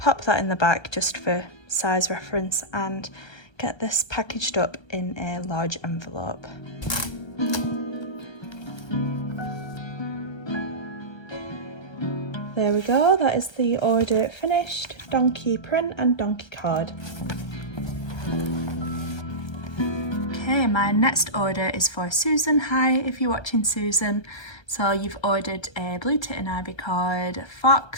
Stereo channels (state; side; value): late; right; 1.3 ms